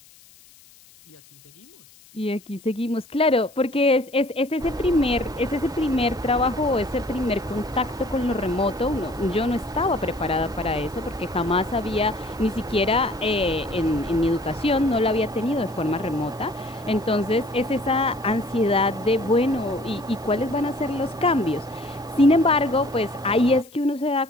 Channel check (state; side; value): noise; left; hiss, 26 dB below the sound